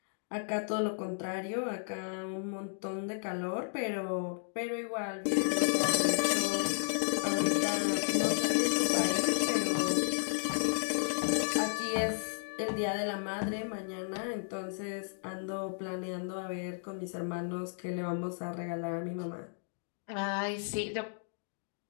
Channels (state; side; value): silent; right; digital silence